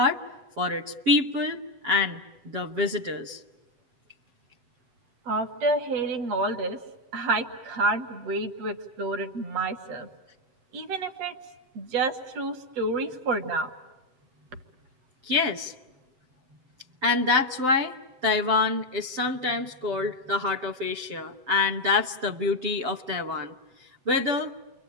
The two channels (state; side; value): late; left; 7.8 ms